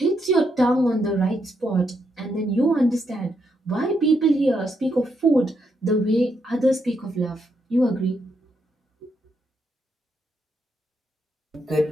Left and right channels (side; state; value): both; normal; correlation 0.79